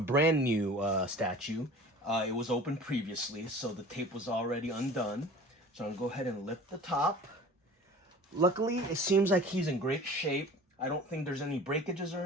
new statue. It was open previously, so the tape was already undone. So I'm going to go ahead and lift the top. Luckily, it seems like he's in great shape. I don't think there's any breakages or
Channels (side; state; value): both; normal; correlation 0.42